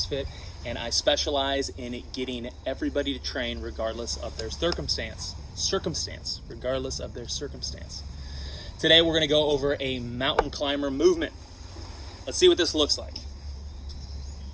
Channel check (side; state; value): both; identical; correlation 1.00